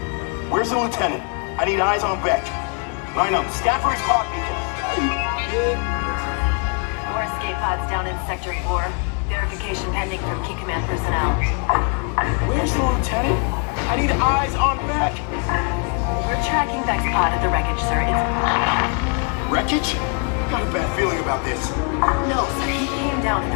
Where's the lieutenant? I need eyes on Beck. Line up, scan for his pod beacon. More escape pods down in Sector 4. Verification pending from Key Command personnel. Where's the lieutenant? I need eyes on Beck. We're tracking Beck's pod at the wreckage, sir. It's... Wreckage? Got a bad feeling about this. No, sir. He came down at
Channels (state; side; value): quieter; right; 39.1 dB